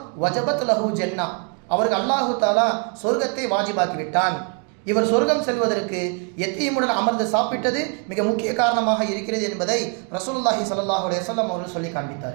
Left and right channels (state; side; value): quieter; left; 39.0 dB